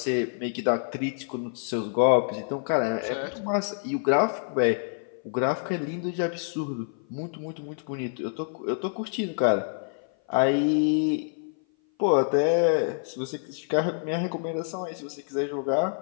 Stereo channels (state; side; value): silent; right; 56 dB below the other